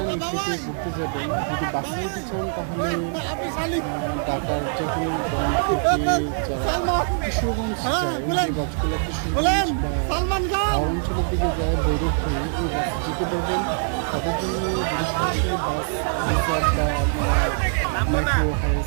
নিকিতে ঘুরতে যাবেন যদি বাসে চান তাহলে ঢাকার যে কোনো পয়েন্ট থেকে যারা কিশোরগঞ্জ যায় যে বাসগুলো কিশোরগঞ্জ বা অঞ্চলের দিকে যায় ভৈরব হয়ে ওই বাসে যেতে পারবেন। তাদের জন্য যদি সরাসরি বাস রিজার্ভ বা আপনারা মাইক্রো হাইস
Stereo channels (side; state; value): left; silent; digital silence